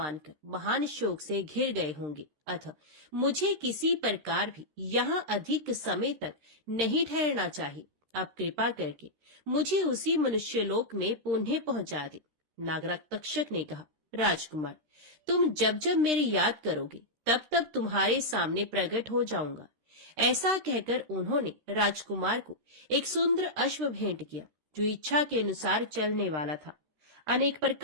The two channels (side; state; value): left; late; 13 ms